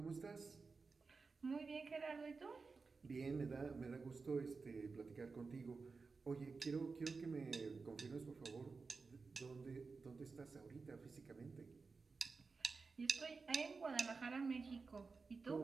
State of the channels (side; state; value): left; quieter; 4.4 dB